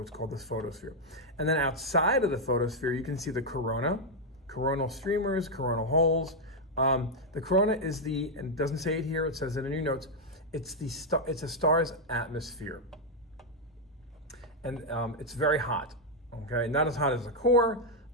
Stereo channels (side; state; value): both; normal; correlation -0.01